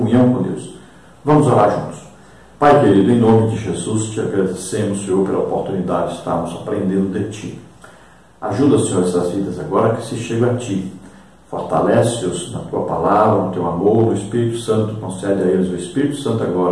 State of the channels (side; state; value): both; identical; correlation 1.00